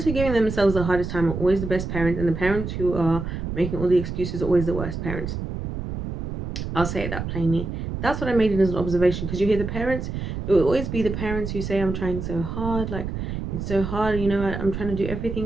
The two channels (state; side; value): noise; right; rumble, 5 dB below the sound